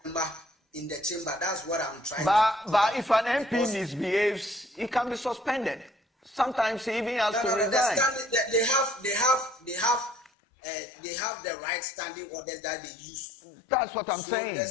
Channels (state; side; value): drops out; right; at 10.3 s